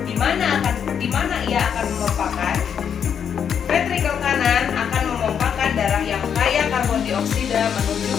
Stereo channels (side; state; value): right; quieter; 7.8 dB